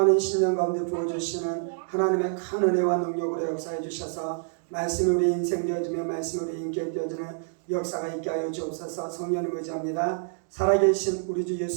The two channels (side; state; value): left; silent; digital silence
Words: 신령 가운데 부어주시는 하나님의 큰 은혜와 능력으로 역사해 주셔서 말씀이 우리 인생 되어지며 말씀이 우리 인격 되어지는 역사가 있게 하여 주옵소서. 성령을 의지합니다. 살아계신 우리 주